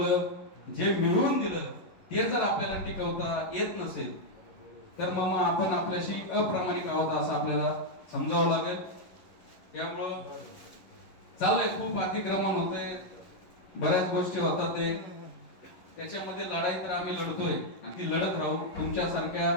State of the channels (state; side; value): late; right; 11 ms